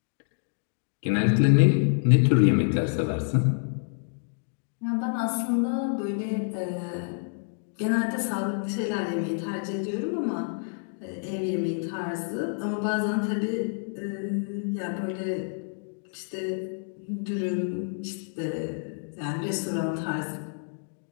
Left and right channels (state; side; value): silent; right; digital silence